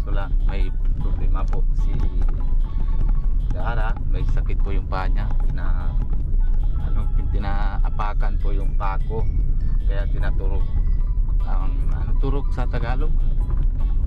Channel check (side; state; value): both; identical; correlation 1.00